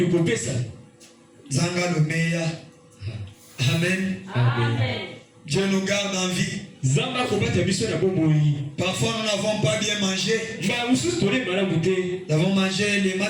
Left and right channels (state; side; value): identical; both; correlation 1.00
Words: Zanga le meilleur. Amen. Amen. Dieu nous garde en vie. Parfois nous n'avons pas bien mangé. Nous avons mangé les